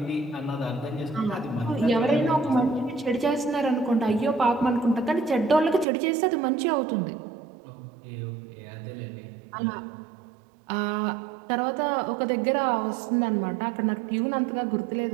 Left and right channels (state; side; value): drops out; left; at 5.9 s